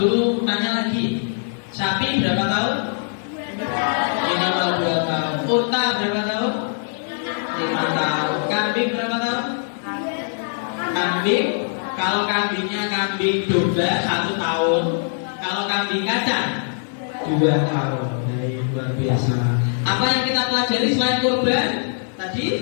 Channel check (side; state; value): right; silent; 64 dB below the other